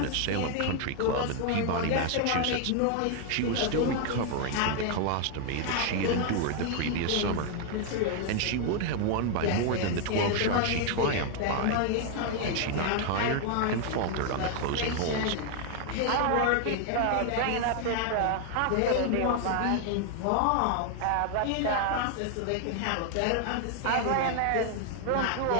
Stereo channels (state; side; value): different; both; correlation 0.00